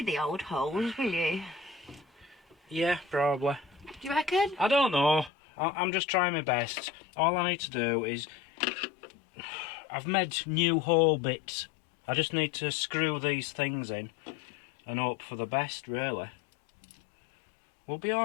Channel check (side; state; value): right; drops out; at 5.3 s